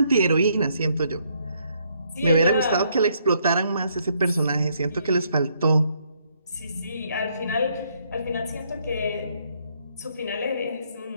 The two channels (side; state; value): both; inverted; correlation -0.71